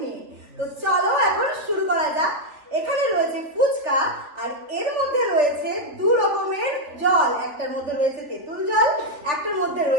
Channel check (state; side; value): late; left; 3.2 ms